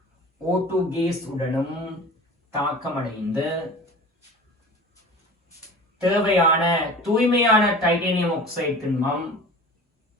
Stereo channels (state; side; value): normal; both; correlation 0.39